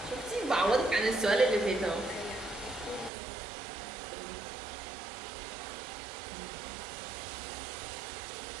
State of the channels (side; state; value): left; drops out; at 3.1 s